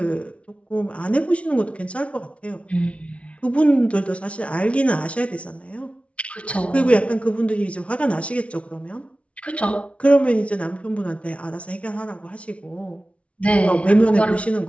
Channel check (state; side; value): late; right; 0.062 ms